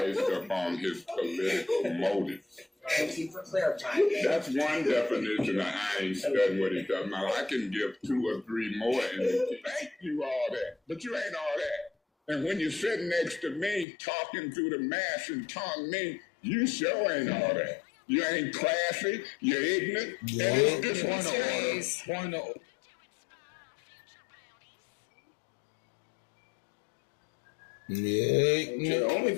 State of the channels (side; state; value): right; drops out; at 13.9 s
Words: upon his political motives. Thank you for clarifying. That's one definition of I ain't studying what he does. Now, I can give 2 or 3 more and thank you all that, but you ain't all that. And when you're sitting next to me, talking through the mask and tongue me, you sure ain't all that. You ain't classy, you're ignorant, and it's disrespectful. Point of order. Yeah. Okay, the only